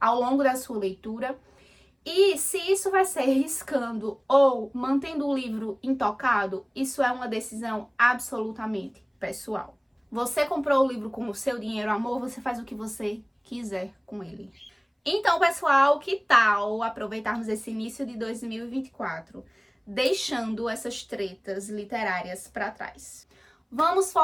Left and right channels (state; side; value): identical; both; correlation 1.00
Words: longo da sua leitura. E se isso vai ser riscando ou mantendo o livro intocado, isso é uma decisão absolutamente pessoal. Você comprou o livro com o seu dinheiro, amor, você faz o que você quiser com ele. Então, pessoal, que tal aproveitarmos esse início de 2024, deixando essas tretas literárias para trás? Vamos